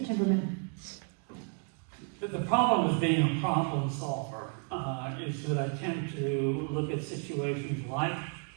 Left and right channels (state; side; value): quieter; left; 39.3 dB